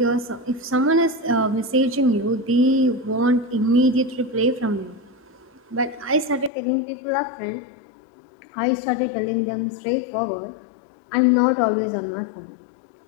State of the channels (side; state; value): right; drops out; at 6.5 s